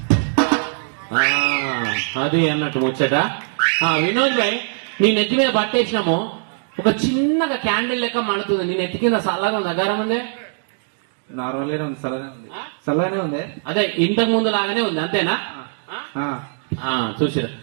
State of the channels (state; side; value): silent; left; digital silence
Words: అది అన్నట్టు ముచ్చట. వినోద్ భాయ్, నీ నెత్తి మీద పట్టేసినాము, ఒక చిన్నగా క్యాండిల్ లెక్క మండుతుంది. నీ నెత్తి కింద సల్లగా ఉంది, అగారం ఉందే? నార్మల్గానే ఉంది, చల్లగానే ఉంది. అదే ఇంతకు ముందు లాగానే ఉంది, అంతేనా? చూసిరా,